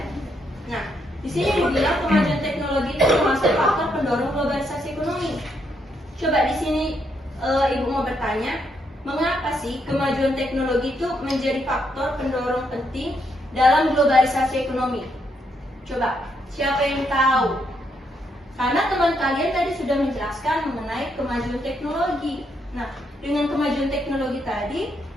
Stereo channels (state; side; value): normal; both; correlation 0.77